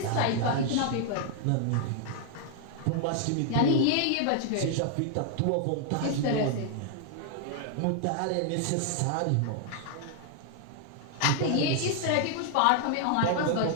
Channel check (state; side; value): different; both; correlation 0.00